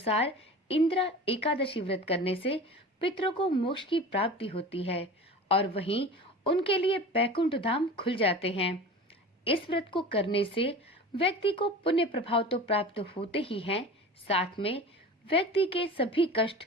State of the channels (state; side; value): normal; both; correlation 0.36